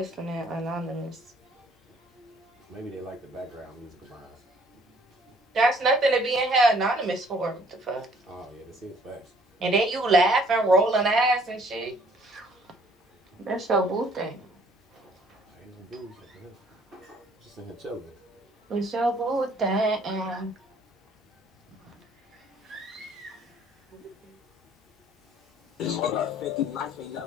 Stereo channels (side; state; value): both; normal; correlation 0.60